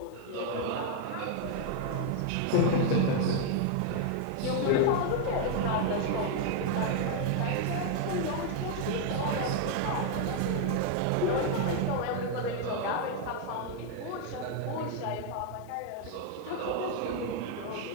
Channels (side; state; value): both; different; correlation 0.00